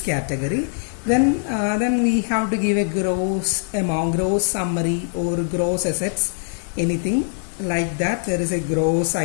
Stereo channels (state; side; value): silent; right; 64 dB below the other